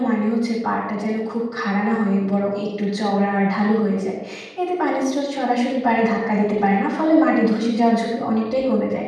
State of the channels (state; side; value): identical; both; correlation 1.00